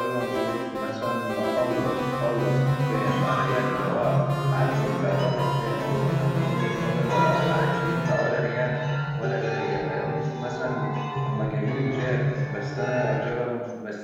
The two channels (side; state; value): both; identical; correlation 1.00